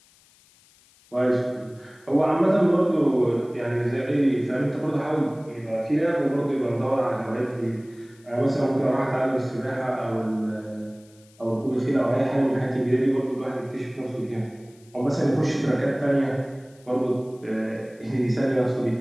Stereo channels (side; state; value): left; noise; hiss, 30 dB below the sound